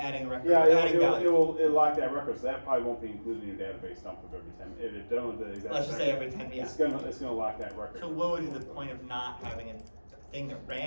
adding a record. yeah, adding value. it'll lock that record. So that probably won't be included in your database dump of every 10. If it don't, the exact Let's just say every 10, yeah. it's gonna lock that record. So what would be the point of not having a thing that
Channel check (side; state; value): both; inverted; correlation -1.00